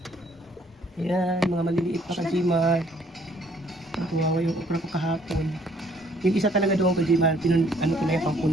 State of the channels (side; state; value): both; normal; correlation 0.62